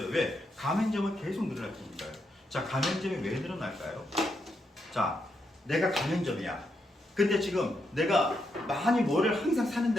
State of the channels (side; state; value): both; normal; correlation 0.81